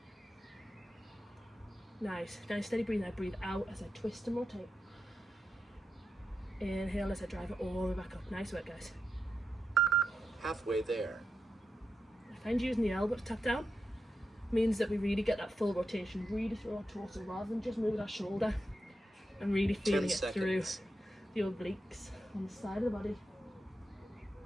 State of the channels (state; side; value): normal; both; correlation 0.87